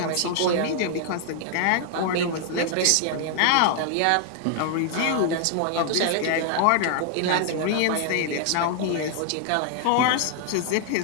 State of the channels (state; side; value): different; both; correlation 0.00